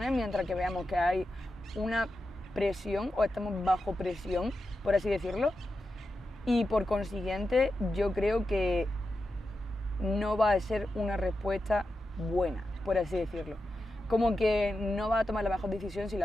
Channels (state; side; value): normal; both; correlation 0.90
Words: mientras que veamos que hay una presión o estamos bajo presión, por así decirlo, y por consiguiente yo creo que no va a ser una respuesta buena, por así decirlo. Como que no va a tomar la mejor decisión si